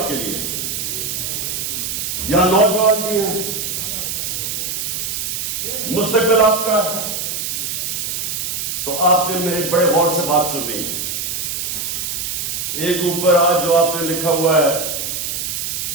کے لیے. یہاں نوجوان بھی ہیں، مستقبل آپ کا ہے، تو آپ نے میرے بڑے غور سے بات سنی. ایک اوپر آج جو آپ نے لکھا ہوا ہے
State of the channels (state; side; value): noise; right; hiss, 3 dB below the sound